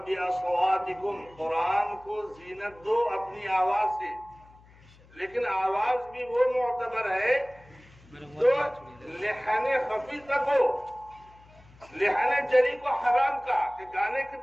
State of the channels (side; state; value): left; noise; hum, 25 dB below the sound